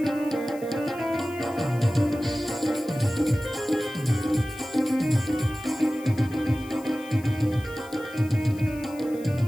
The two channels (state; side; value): noise; left; hiss, 21 dB below the sound